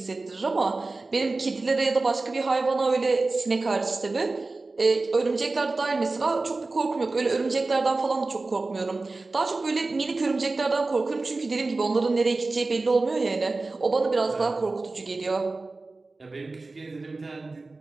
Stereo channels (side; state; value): left; quieter; 3.4 dB